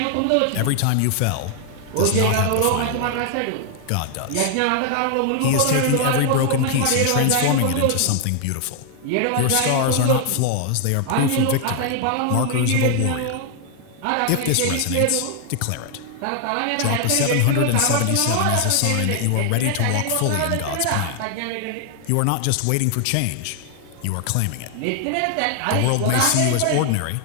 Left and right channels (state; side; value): different; both; correlation 0.00